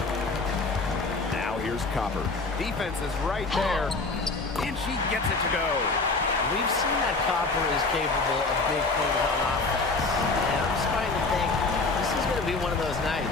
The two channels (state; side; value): quieter; right; 3.7 dB